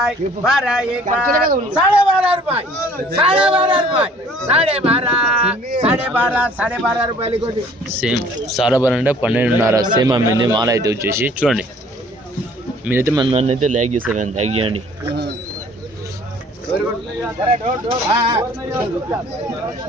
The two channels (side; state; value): both; normal; correlation 0.55